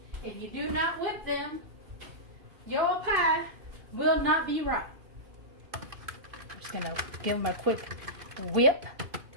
If you do not whip them, your pie will not be right. I'm just going to give them a quick whip.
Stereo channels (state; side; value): late; left; 2.5 ms